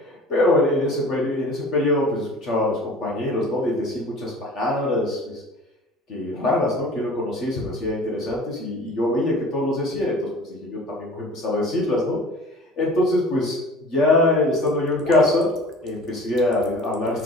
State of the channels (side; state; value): both; normal; correlation 0.44